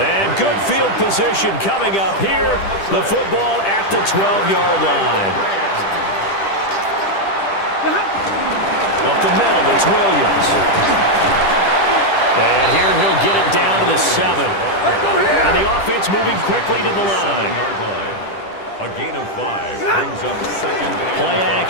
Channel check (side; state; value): right; late; 10 ms